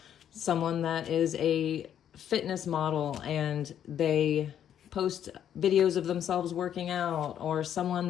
someone that is a fitness model and they post videos of themselves working out, or someone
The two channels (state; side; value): quieter; right; 9.7 dB